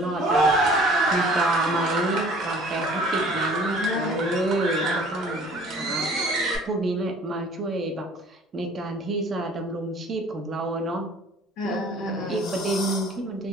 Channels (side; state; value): both; normal; correlation 0.51